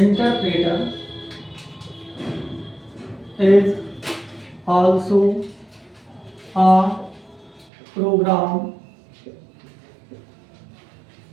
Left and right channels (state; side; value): drops out; left; at 7.7 s